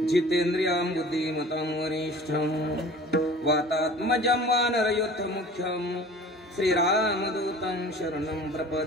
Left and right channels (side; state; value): both; normal; correlation 0.44